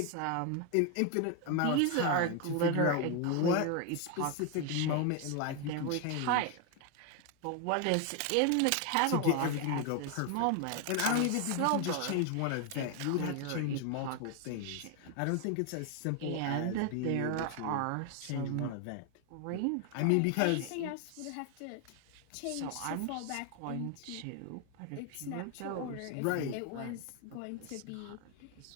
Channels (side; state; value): both; different; correlation 0.01